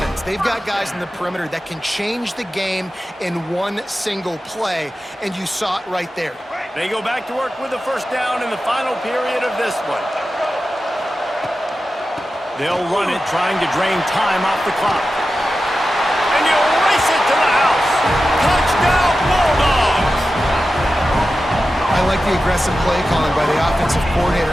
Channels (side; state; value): both; normal; correlation 0.93